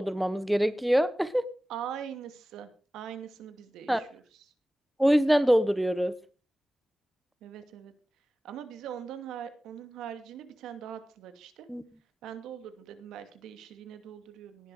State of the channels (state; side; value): normal; both; correlation 0.96